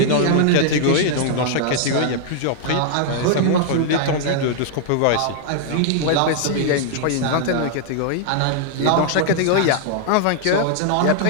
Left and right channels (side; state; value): both; different; correlation -0.01